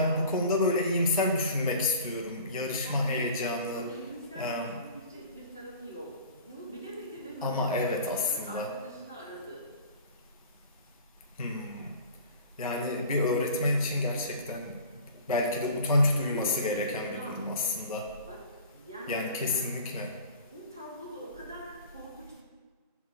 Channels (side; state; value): both; inverted; correlation -0.42